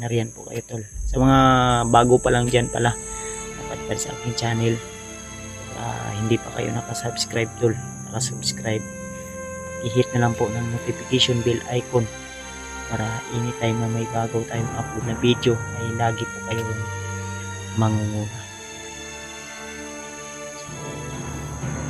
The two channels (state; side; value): identical; both; correlation 1.00